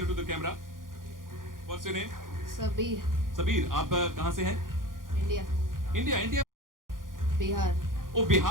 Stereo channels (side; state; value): left; late; 0.90 ms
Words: the camera. What's your name? Sabir. आप कहाँ से हैं? इंडिया. बिहार. ओ